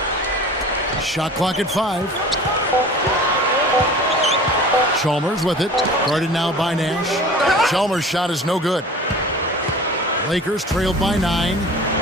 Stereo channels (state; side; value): normal; both; correlation 0.41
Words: 6. Shot clock at 5. Chalmers with it. Guarded now by Nash. Chalmers' shot is no good. Lakers trailed by 9.